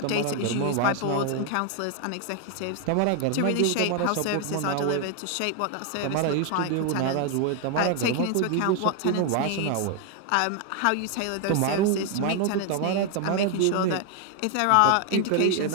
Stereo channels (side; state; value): both; different; correlation 0.01